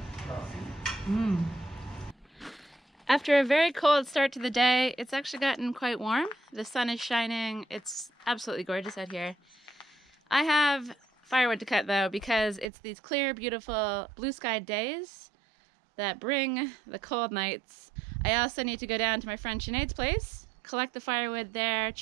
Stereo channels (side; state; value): left; drops out; at 12.7 s